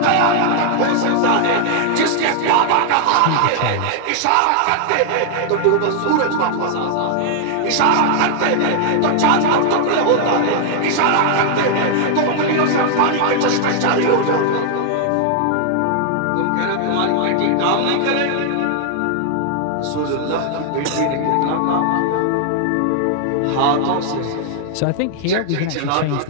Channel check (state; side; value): different; both; correlation 0.00